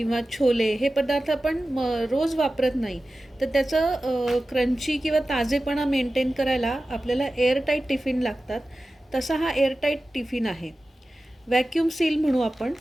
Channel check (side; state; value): both; normal; correlation 0.95